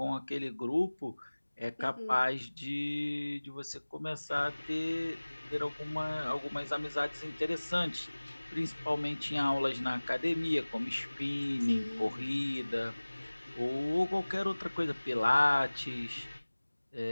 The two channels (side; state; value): both; inverted; correlation -1.00